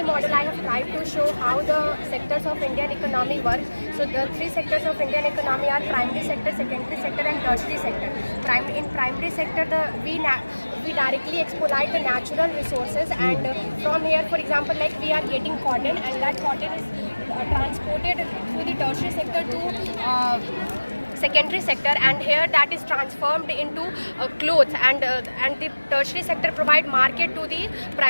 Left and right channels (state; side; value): inverted; both; correlation -1.00